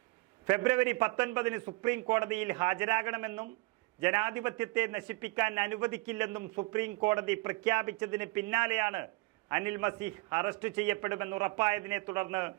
ഫെബ്രുവരി 19-ന് സുപ്രീം കോടതിയിൽ ഹാജരാകണമെന്നും ജനാധിപത്യത്തെ നശിപ്പിക്കാൻ അനുവദിക്കില്ലെന്നും സുപ്രീം കോടതി പ്രഖ്യാപിച്ചതിന് പിന്നാലെയാണ് അനിൽ മസീഹ് അറസ്റ്റ് ചെയ്യപ്പെടുമെന്ന് ഉറപ്പായതിനെ തുടർന്ന്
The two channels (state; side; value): quieter; left; 24.7 dB